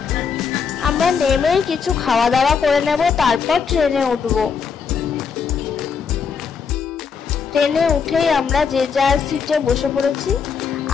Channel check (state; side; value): quieter; right; 6.0 dB